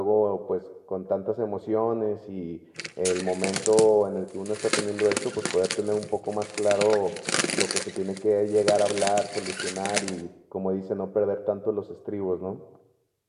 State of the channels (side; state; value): both; identical; correlation 1.00